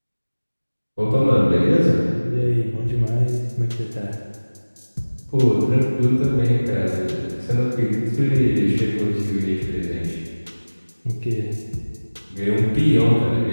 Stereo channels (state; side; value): inverted; both; correlation -1.00